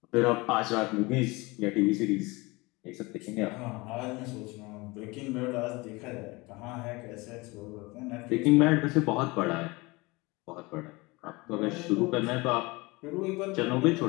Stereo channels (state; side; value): quieter; right; 24.1 dB